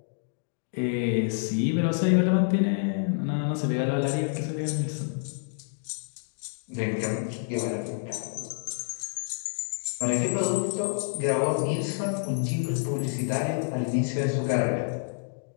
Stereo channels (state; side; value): silent; right; digital silence